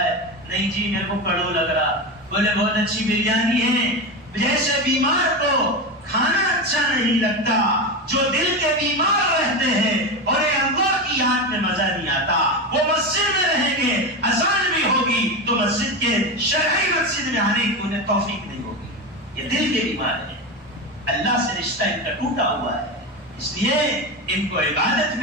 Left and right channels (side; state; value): both; normal; correlation 0.19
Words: ہے، نہیں جی میرے کو کڑو لگ رہا، بولے بہت اچھی بریانی ہے۔ جیسے بیمار کو کھانا اچھا نہیں لگتا، جو دل کے بیمار رہتے ہیں اور اللہ کی یاد میں مزہ نہیں آتا، وہ مسجد میں رہیں گے، اذان بھی ہوگی تو مسجد کے شرعی مسجد میں آنے کی انہیں توفیق نہیں ہوگی۔ یہ دل کے بیمار ہیں، اللہ سے رشتہ ان کا ٹوٹا ہوا ہے، اس لیے ان کو عبادت